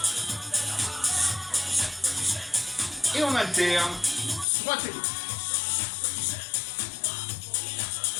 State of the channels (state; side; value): drops out; right; at 4.5 s